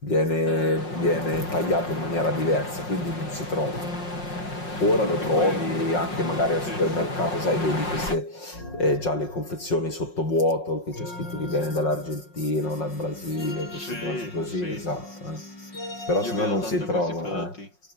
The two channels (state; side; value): late; right; 5.5 ms